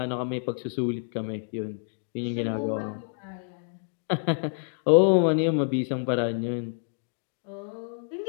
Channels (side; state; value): right; silent; 59 dB below the other